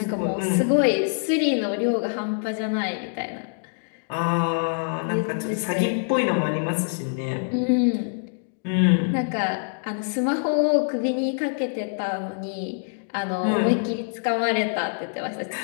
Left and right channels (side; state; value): right; silent; digital silence